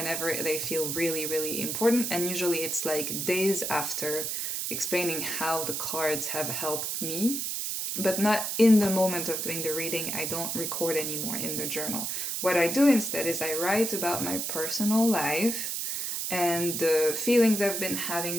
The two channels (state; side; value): noise; right; hiss, 2 dB below the sound